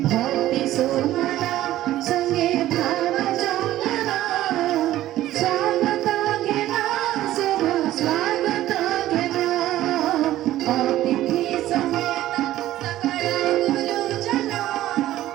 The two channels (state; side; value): quieter; left; 14.2 dB